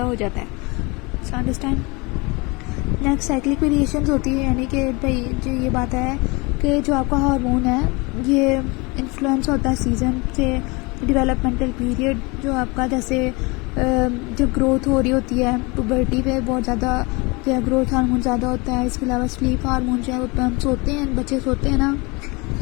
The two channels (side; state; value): right; quieter; 27.0 dB